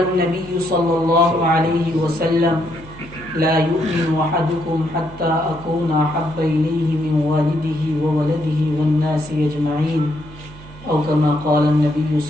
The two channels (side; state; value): right; noise; hum, 19 dB below the sound